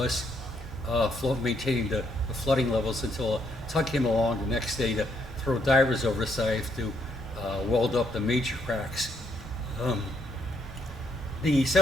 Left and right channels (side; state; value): both; normal; correlation 0.74